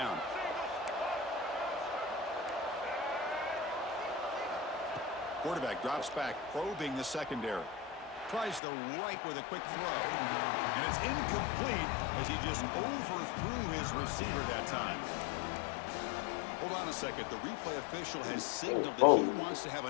Quarterback drops back, probing the secondary. Tries the right with a quick throw. And it's incomplete as he just overthrew his receiver that time. Hold on a second. The replay official has signaled that he wants to have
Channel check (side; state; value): right; drops out; at 8.6 s